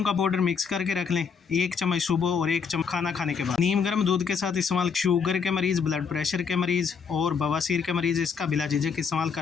का पाउडर मिक्स करके रख लें। 1 चम्मच सुबह और 1 चम्मच खाना खाने के बाद। नीम गर्म दूध के साथ इस्तेमाल। शुगर के मरीज़, ब्लड प्रेशर के मरीज़ और बवासीर के मरीज़ इसका बिला झिझक इस्तेमाल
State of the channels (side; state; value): right; quieter; 6.1 dB